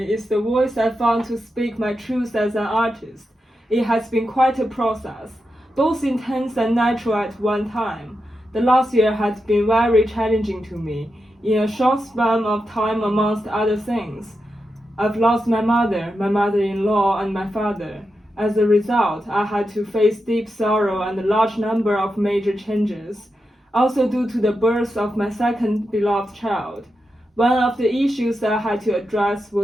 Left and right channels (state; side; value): normal; both; correlation 0.88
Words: is the voice I found to speak my truth as an artist. It has been quite a process, both intense and natural at one time. The last year had been very challenging to me, in a short span of time amongst other things. I've lost my mother-in-law, and my father. As a result, I had to face deep sorrow and a large number of major changes. Also due to the birth of my second beloved child. One of the issues I had to address